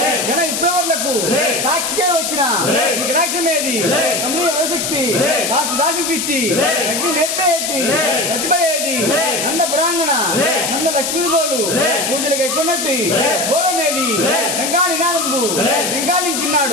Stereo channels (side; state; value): left; noise; hiss, 2 dB below the sound